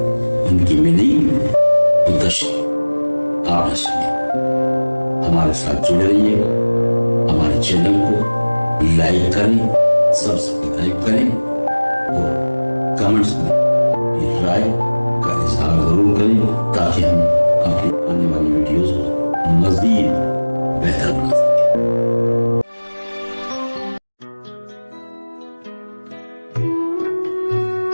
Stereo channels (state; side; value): inverted; both; correlation -1.00